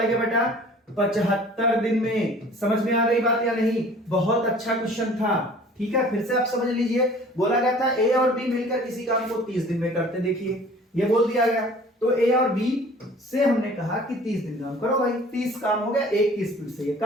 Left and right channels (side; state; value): both; normal; correlation 0.48